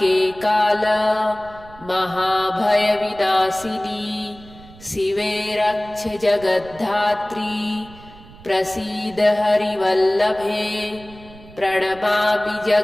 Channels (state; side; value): noise; right; rumble, 21 dB below the sound